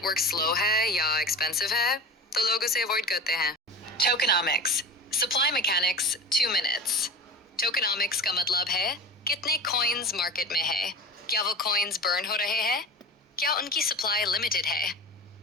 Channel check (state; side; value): normal; both; correlation 0.32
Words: स्लो है या एक्सपेंसिव है तो लोग उसे अवॉइड करते हैं। टोकेनॉमिक्स, सप्लाई मैकेनिक्स, 2 मिनट्स। टोकेनॉमिक्स का मतलब है कितने कॉइन्स मार्केट में है, क्या वो कॉइन्स बर्न हो रहे हैं, क्या उनकी सप्लाई लिमिटेड है।